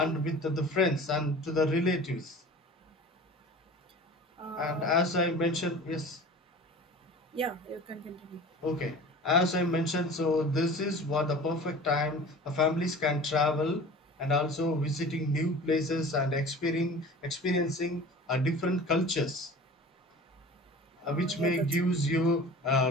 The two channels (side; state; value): both; normal; correlation 0.40